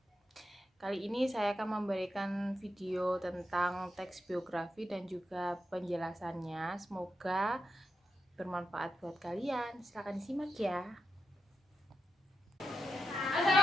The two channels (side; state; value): both; normal; correlation 0.87